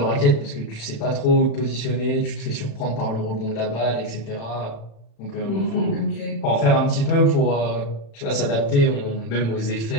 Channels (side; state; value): right; late; 36 ms